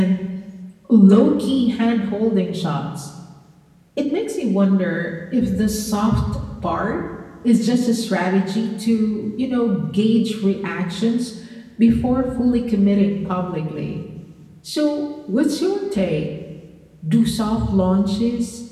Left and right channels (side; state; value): both; identical; correlation 1.00